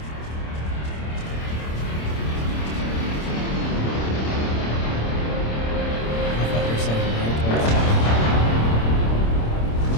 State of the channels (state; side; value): late; right; 26 ms